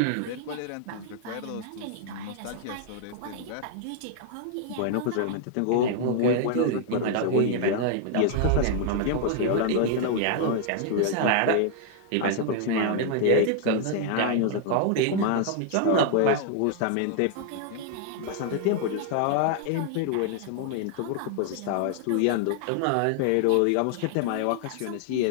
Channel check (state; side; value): different; both; correlation 0.00